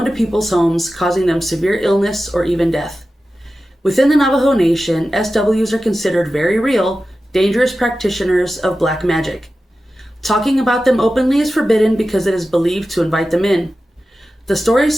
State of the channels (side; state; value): both; normal; correlation 0.94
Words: people's homes, causing them severe illness or even death. Within the Navajo Nation, SWs are considered very real, dangerous practitioners of black magic. Talking about them openly is forbidden because it is believed to invite them in. The